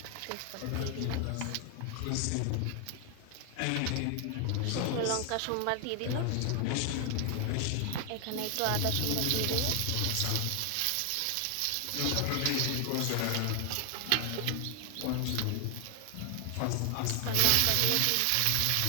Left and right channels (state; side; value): different; both; correlation 0.00